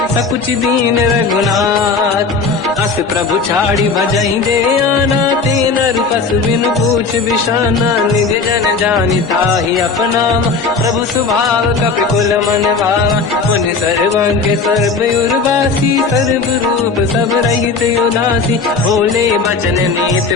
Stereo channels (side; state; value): right; quieter; 4.5 dB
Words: सकुच दीन रघुनाथ। अस प्रभु छाड़ी भजहि दे आना, ते नर पशु बिनु पूछ बिशाना। निज जन जानि ताहि अपनाम, प्रभु स्वभाव कपि कुल मन भावा। मुनि सर्वज्ञ सर्व उर्वासी, सर्व रूप सब रहित उदासी। भोले बचन